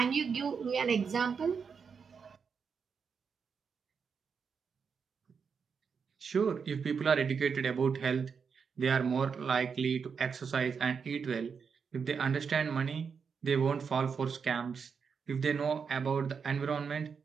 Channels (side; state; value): left; quieter; 6.0 dB